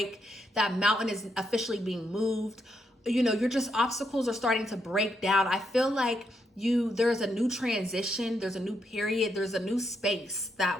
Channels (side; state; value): both; normal; correlation 0.79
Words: That mountain is officially being moved. You know, obstacles are starting to break down. I feel like there's a new transition, there's a new period, there's a new space